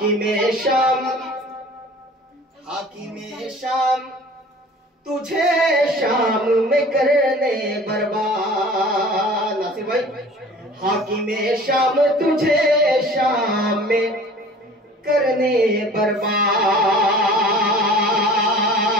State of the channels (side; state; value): both; normal; correlation 0.45